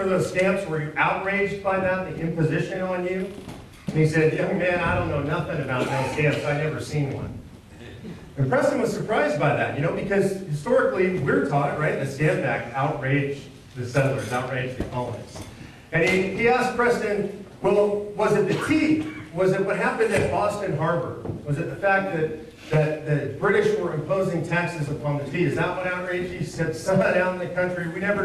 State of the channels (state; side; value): identical; both; correlation 1.00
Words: those stamps? Were you outraged by that, the imposition on you? And he said, young man, I don't know nothing about no stamps. I never seen one. And Preston was surprised by that, because historically we're taught, right, the Stamp Act outraged the settlers, outraged the colonists. And he asked Preston, well, was it the tea? Was it what happened at Boston Harbor? Was it the fact that the British were imposing taxes upon the tea? Is that what outraged you? He said, son, down in the country, we